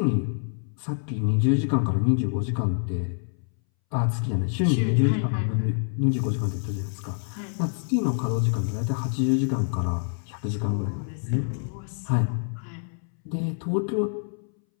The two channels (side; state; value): right; silent; 61 dB below the other